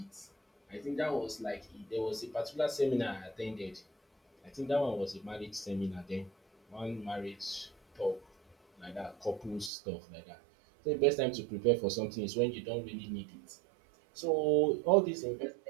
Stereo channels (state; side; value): drops out; left; at 9.7 s